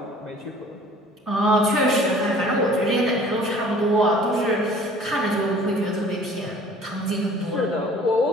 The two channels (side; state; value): both; normal; correlation 0.50